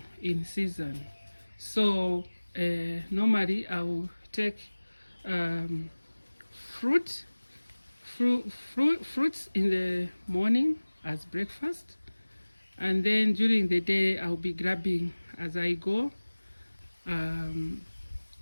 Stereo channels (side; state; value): both; inverted; correlation -1.00